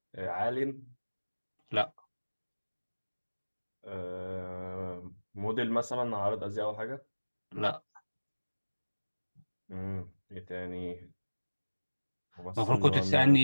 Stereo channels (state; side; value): inverted; both; correlation -1.00